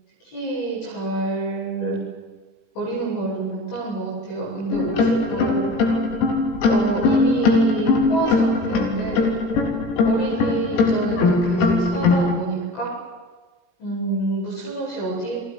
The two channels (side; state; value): right; late; 18 ms